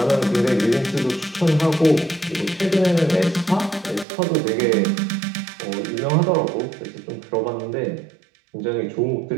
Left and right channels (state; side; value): drops out; left; at 4.0 s